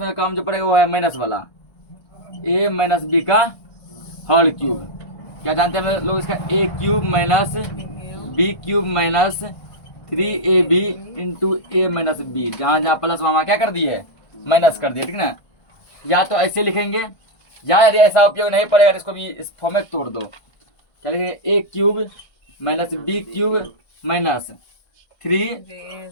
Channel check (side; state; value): right; late; 1.5 ms